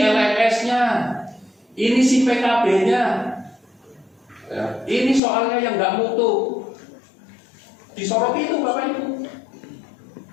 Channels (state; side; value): drops out; right; at 5.2 s